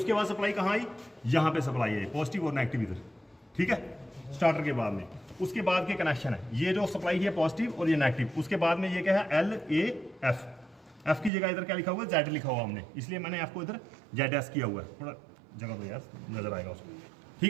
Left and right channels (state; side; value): drops out; left; at 11.3 s